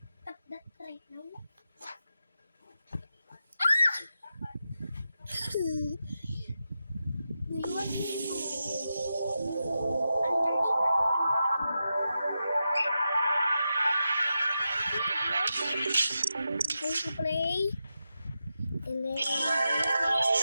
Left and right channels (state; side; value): inverted; both; correlation -0.89